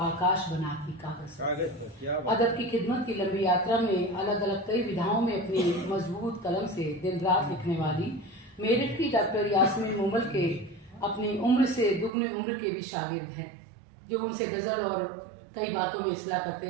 बनाती कागज पर। अदब की खिदमत की लंबी यात्रा में अलग अलग कई विधाओं में अपनी मजबूत कलम से दिन रात लिखने वाली मेरठ की डॉक्टर यास्मीन मूमल के अपनी उम्र से दुगनी उम्र के भी शागिर्द हैं, जो उनसे गजल और कई बातों में इस्लाह करते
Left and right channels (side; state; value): left; drops out; at 12.1 s